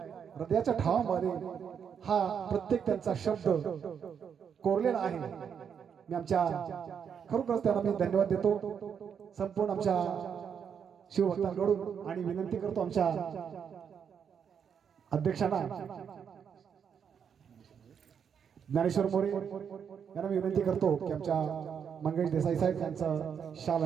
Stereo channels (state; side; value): quieter; left; 7.4 dB